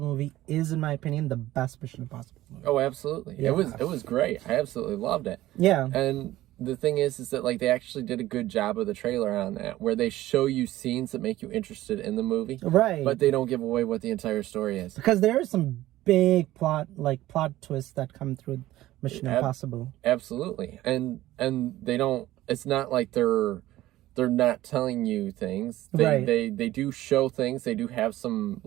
movie is, in my opinion, the best Mission Impossible movie. Oh, absolutely. Yeah. It was great. I absolutely loved it. Yeah. And the thing is that like they actually did a good job of the trailer on that, where they show you scenes that make you interested in the movie, Right. but they don't give away what the entire story is. Because there are some big plot twists that come through Mission Impossible. Absolutely. And they don't. It's not like they're not telling you things. Right. They do show things. They do have some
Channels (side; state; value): left; quieter; 15.6 dB